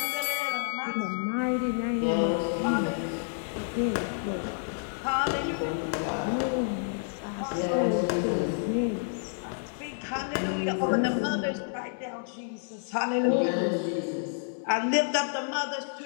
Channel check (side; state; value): right; silent; digital silence